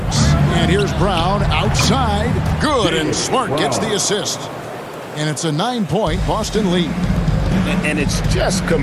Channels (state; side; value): identical; both; correlation 1.00